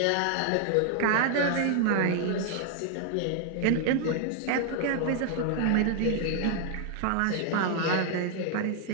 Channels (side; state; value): both; different; correlation 0.00